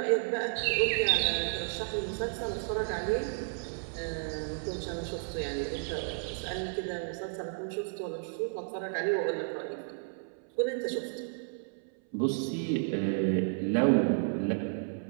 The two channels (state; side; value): silent; left; 56 dB below the other